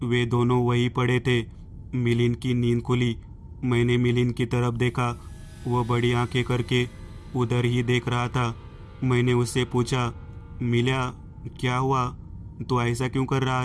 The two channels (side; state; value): both; identical; correlation 1.00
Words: वे दोनों वहीं पड़े थे। मिलिंद की नींद खुली। मैंने मिलिंद की तरफ देखा। वह बड़ी आंखें करके उधर ही देख रहा था। मैंने उससे पूछा, मिल्या, क्या हुआ, तो ऐसा क्यों कर रहा